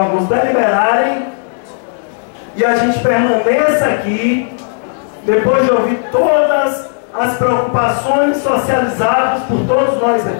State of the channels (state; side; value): silent; right; digital silence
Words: deliberarem e a gente permaneça aqui, depois de ouvir todas as preocupações socializadas por todos nós